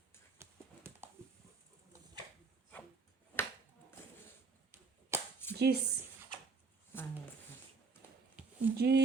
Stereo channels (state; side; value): quieter; left; 4.4 dB